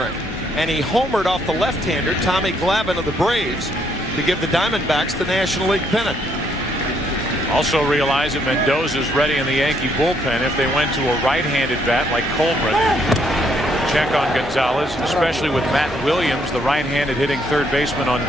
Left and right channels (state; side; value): normal; both; correlation 0.71